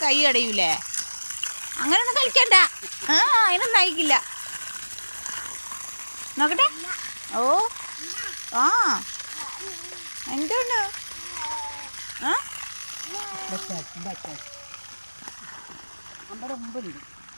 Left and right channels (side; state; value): both; inverted; correlation -1.00